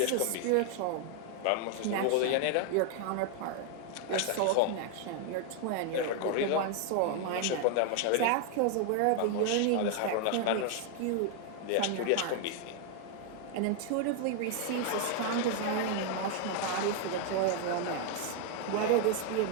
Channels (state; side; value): different; both; correlation 0.01